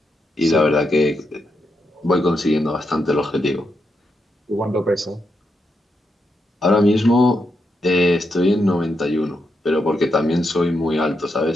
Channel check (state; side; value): normal; both; correlation 0.83